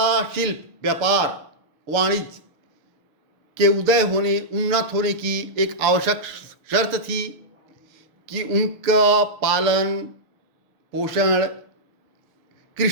शिल्प, व्यापार, वाणिज्य के उन्नत होने की एक आवश्यक शर्त थी कि उनका पालन पोषण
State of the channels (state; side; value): late; left; 6.8 ms